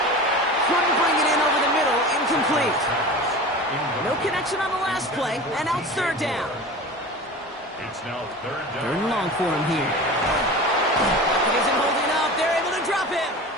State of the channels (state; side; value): normal; both; correlation 0.34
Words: Couldn't bring it in over the middle. Incomplete. No connection on the last play, and now it's 3rd down. It's now 3rd down. 3rd and long for him here. He isn't holding up. They're able to drop him.